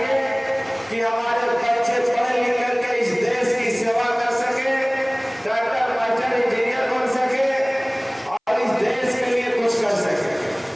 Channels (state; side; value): identical; both; correlation 1.00